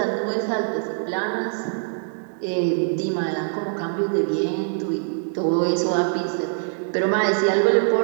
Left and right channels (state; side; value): silent; left; digital silence